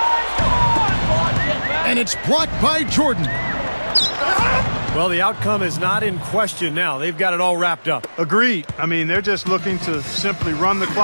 And it's blocked by Jordan. Well, the outcome is not in question now. They've got it all wrapped up. Agreed. I mean, they're just looking to simply run the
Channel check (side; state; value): both; inverted; correlation -1.00